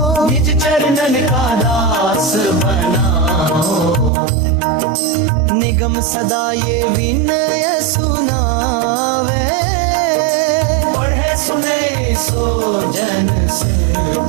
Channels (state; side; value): drops out; left; at 4.1 s